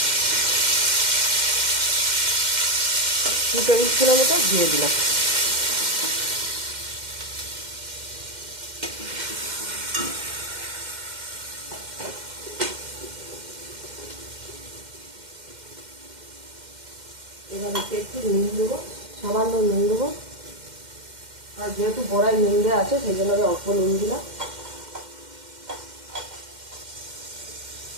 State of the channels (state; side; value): late; left; 2.1 ms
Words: 2 টেবিল স্পুনের মতো দিয়ে দিলাম। এবার একটু নুন দেবো, সামান্য নুন দেবো, আর যেহেতু বড়ায় নুন দেওয়া আছে সেই জন্য আমি অল্প নুন দিলাম।